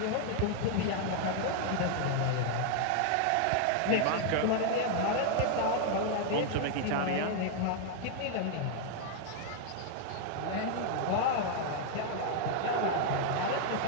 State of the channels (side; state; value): both; different; correlation 0.00